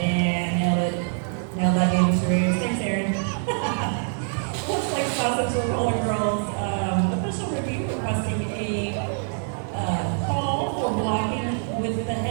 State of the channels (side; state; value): left; silent; 62 dB below the other